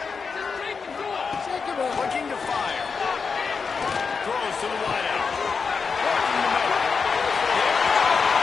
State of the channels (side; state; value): right; quieter; 5.3 dB